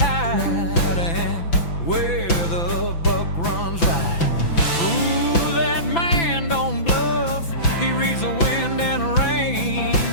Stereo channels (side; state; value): right; late; 6.0 ms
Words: and where the buck runs right. Ooh, that man don't bluff, he reads the wind and rain.